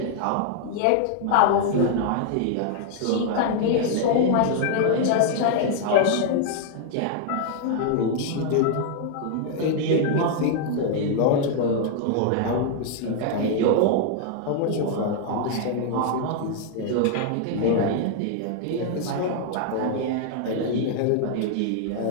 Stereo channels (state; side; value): different; both; correlation 0.00